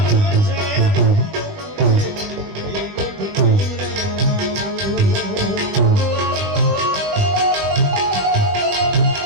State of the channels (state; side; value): late; left; 21 ms